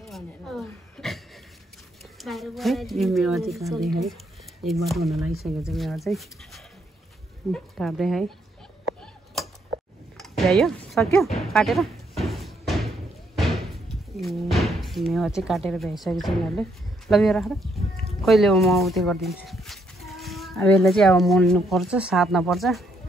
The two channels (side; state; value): both; normal; correlation 0.73